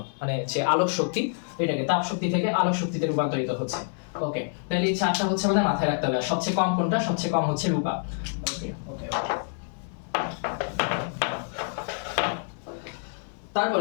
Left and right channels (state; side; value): silent; right; digital silence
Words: মানে যে আলোক শক্তি, এটাকে তাপ শক্তি থেকে আলোক শক্তিতে রূপান্তরিত হচ্ছে। ওকে, তাহলে এই চারটা হচ্ছে আমাদের মাথায় রাখতে হবে। সবচেয়ে কম কোনটা? সবচেয়ে কম হচ্ছে রূপা। ওকে ওকে ওকে।